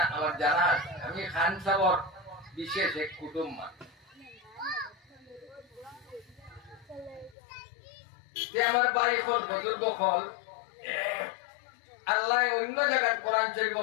আমার জানা আছে আমি খান সাবর বিশেষ এক কুটুম্ব। আমার ভাই হল বুজুর্গ হল আল্লাহ অন্য জায়গায় কোরআন শরীফ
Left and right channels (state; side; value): drops out; right; at 7.4 s